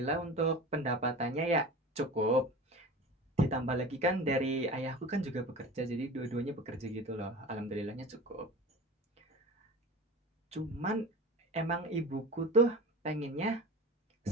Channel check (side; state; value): both; normal; correlation 0.34